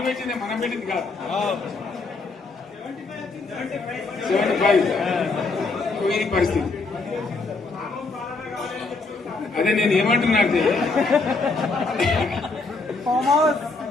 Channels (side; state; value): right; quieter; 3.8 dB